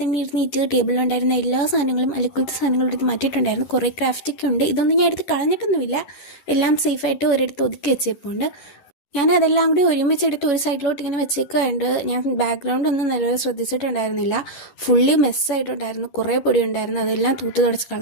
തന്നെ ഇരുന്നിട്ട് ടേബിളിലുണ്ടായിരുന്ന എല്ലാ സാധനങ്ങളും അലക്കുലത്തെ സാധനങ്ങളും എടുത്ത് മാറ്റിയിട്ടുണ്ടായിരുന്നു. കുറേ ക്രാഫ്റ്റൊക്കെ ഉണ്ട്. ഇതൊന്നും ഞാൻ എടുത്ത് കളഞ്ഞിട്ടൊന്നുമില്ല. എല്ലാം സേഫായിട്ട് ഒരിടത്ത് ഒതുക്കി വെച്ചേപ്പുണ്ട്. ഞാൻ അതെല്ലാം കൂടി ഒരുമിച്ചെടുത്ത് ഒരു സൈഡിലോട്ട് ഇങ്ങനെ വെച്ചേക്കുന്നുണ്ട്. ഞാൻ ബാക്ക്ഗ്രൗണ്ട് ഒന്നും നല്ലപോലെ ശ്രദ്ധിച്ചിട്ടുണ്ടായിരുന്നില്ല. ഫുള്ളി മെസ്സായിട്ടുണ്ടായിരുന്നു. കുറേ പൊടി ഉണ്ടായിരുന്നു. അതെല്ലാം തൂത്ത് തുടച്ച്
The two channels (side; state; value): right; late; 11 ms